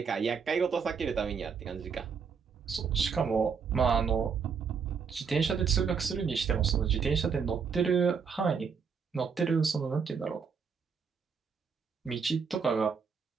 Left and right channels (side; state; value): left; quieter; 6.0 dB